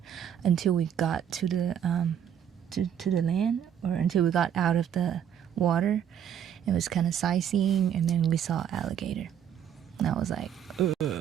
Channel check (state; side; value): quieter; left; 9.1 dB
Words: until we got to to the land, or until we got out of the water. It was kind of sightseeing, and then we saw alligator. And I was like,